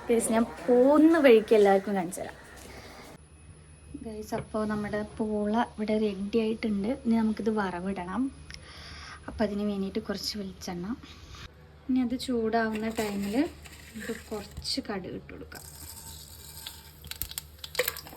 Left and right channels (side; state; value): both; identical; correlation 1.00